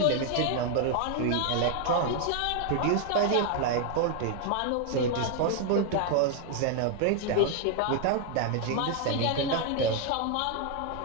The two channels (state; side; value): different; both; correlation 0.00